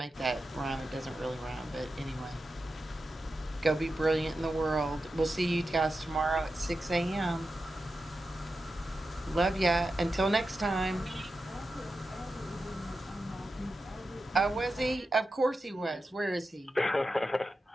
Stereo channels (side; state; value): both; normal; correlation 0.90